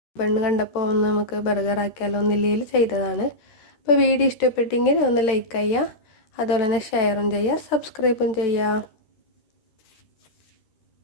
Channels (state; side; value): late; right; 13 ms